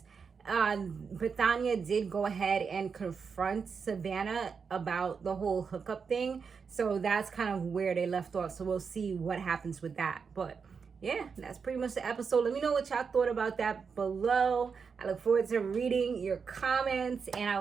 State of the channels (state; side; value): quieter; left; 5.8 dB